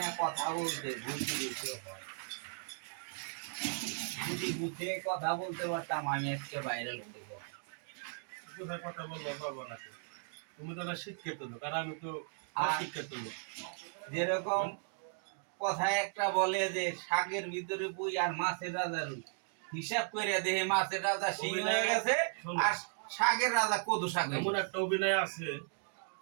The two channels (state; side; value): silent; left; 54 dB below the other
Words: না কথা বলতে, ভুলতে বেশি হয়। যদি বুঝে কথা বলতে পারতাম আমি আজকে ভাইরাল হতে পারতাম। কোথায় কথা বলবো পারবো না। তুমি তো না শিক্ষিত লোক আর আমি তো আর অশিক্ষিত লোক। যেরকম কথায় একটা বলে যে শাকের ভিতরে পুই আর মাছের রাজা রুই, হিসাব করে দেখে মাছের রাজা শিং হয়ে গেছে আর শাকের রাজা কদু শাক হয়ে এমন গেছে। একটা অভিনয় আছে